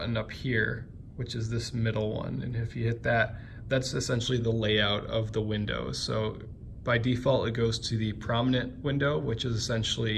up here, which is this middle one. And if you hit that, that's essentially the layout of the windows. So by default, it goes to the prominent window, which is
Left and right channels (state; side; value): identical; both; correlation 1.00